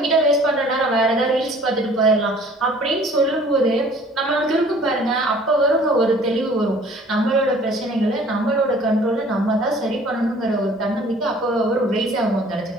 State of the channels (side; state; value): both; normal; correlation 0.52